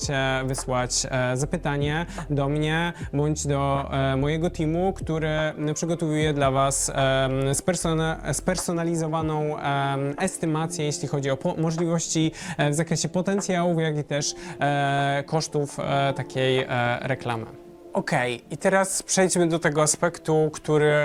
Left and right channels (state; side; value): identical; both; correlation 1.00